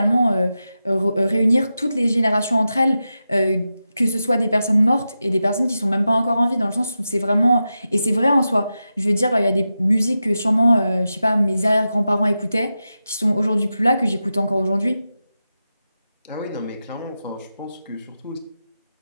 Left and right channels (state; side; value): inverted; both; correlation -0.91